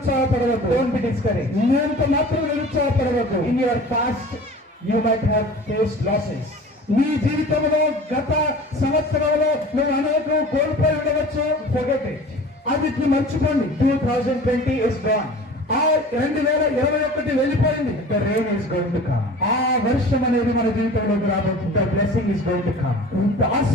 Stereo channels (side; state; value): both; normal; correlation 0.41